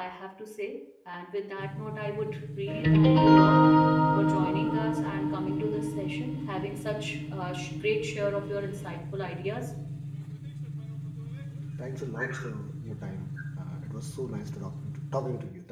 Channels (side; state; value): both; identical; correlation 1.00